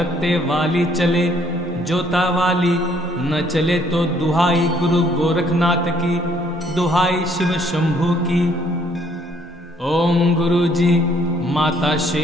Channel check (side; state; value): both; normal; correlation 0.64